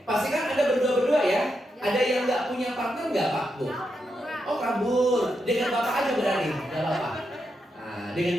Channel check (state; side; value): normal; both; correlation 0.84